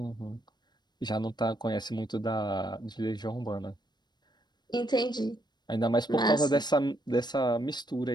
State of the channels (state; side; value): late; right; 0.21 ms